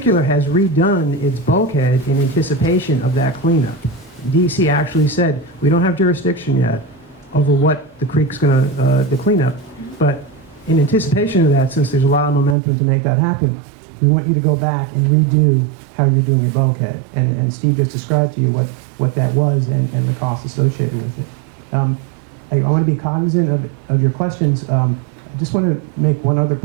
has redone its bulkhead in anticipation of that cleanup. DEC actually said, we don't have jurisdiction yet over what the creek's going to, the cleanup, but in anticipation of that, since there's a lot of momentum to make that happen, we want you to go back and redo how you're doing your bulkhead. And Steve just described to you what that was and the costs associated with it. I want to be cognizant of your questions. I just want to make one other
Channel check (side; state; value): left; drops out; at 12.6 s